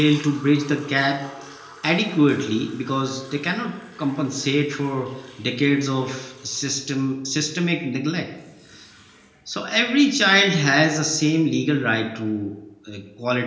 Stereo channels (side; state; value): both; identical; correlation 1.00